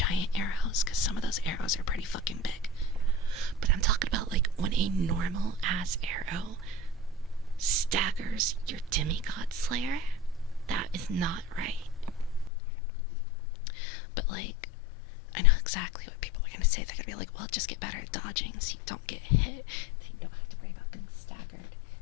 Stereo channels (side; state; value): right; drops out; at 12.5 s